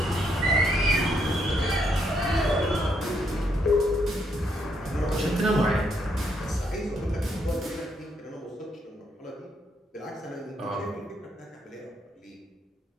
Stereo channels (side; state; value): both; normal; correlation 0.74